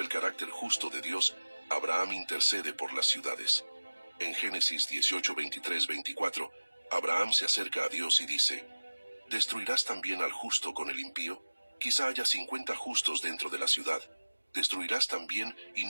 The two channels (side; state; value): both; inverted; correlation -1.00